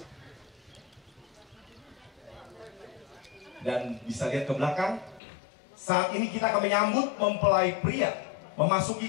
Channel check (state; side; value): drops out; right; at 5.2 s